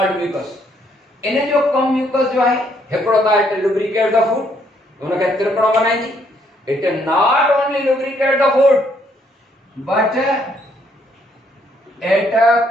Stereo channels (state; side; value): normal; both; correlation 0.69